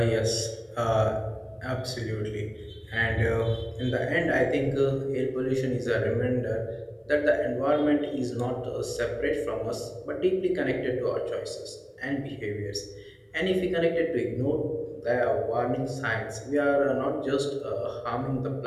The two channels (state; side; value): identical; both; correlation 1.00